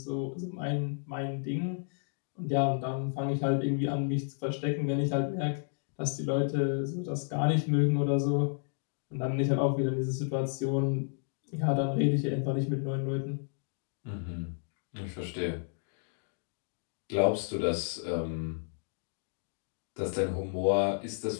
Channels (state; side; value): silent; right; digital silence